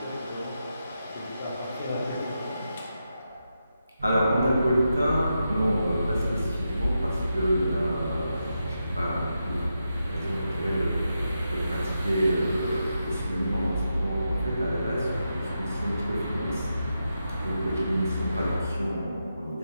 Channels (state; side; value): inverted; both; correlation -0.87